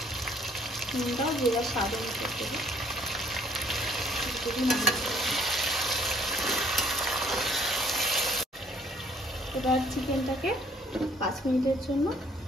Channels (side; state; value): both; normal; correlation 0.61